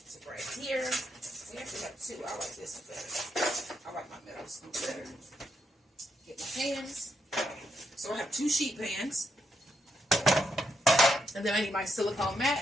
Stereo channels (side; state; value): both; normal; correlation 0.80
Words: right here. We actually have two. I like this better. I like my metal scoop better. Get my pans. So I have 2 sheet pans. And then I need my silicone